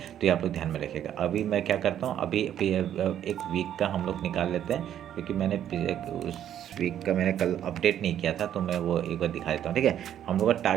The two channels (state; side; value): quieter; left; 10.5 dB